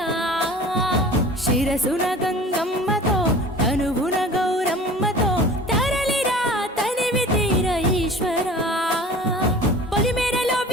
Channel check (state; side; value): normal; both; correlation 0.42